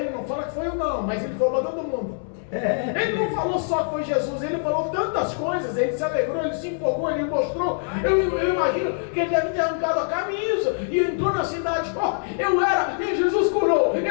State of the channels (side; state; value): right; silent; 63 dB below the other